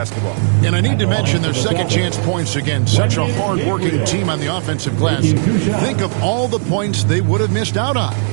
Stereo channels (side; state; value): left; silent; 64 dB below the other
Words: And I need to mention their second chance points again. Such a hard-working team on the offensive glass. Think of all the points they would have missed out on